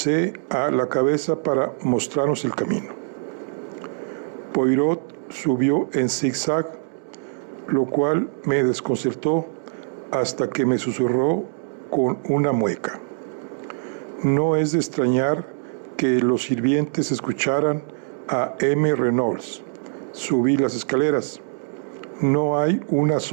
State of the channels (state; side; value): silent; left; digital silence